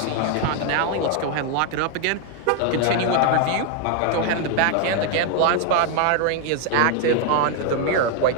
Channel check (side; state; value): both; different; correlation 0.01